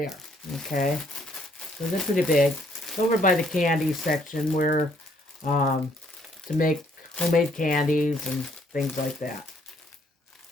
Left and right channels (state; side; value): normal; both; correlation 0.67